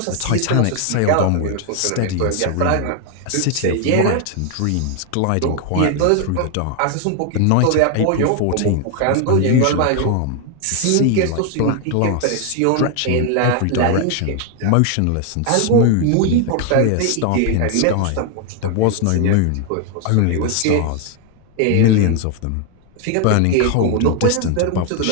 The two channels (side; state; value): both; different; correlation 0.00